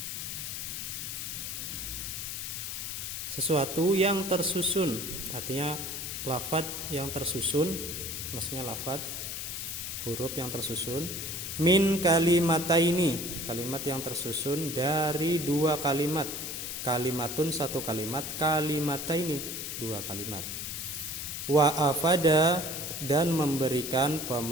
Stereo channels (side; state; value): left; noise; hiss, 5 dB below the sound